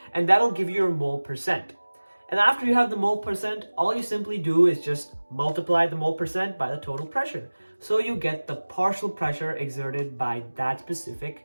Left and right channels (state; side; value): inverted; both; correlation -1.00